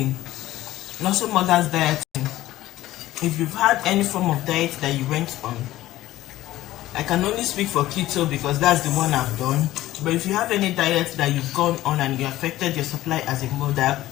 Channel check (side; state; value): right; quieter; 15.5 dB